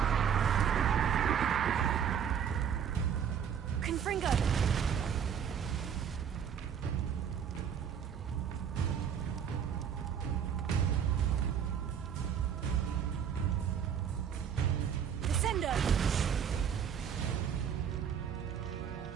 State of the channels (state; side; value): quieter; left; 8.1 dB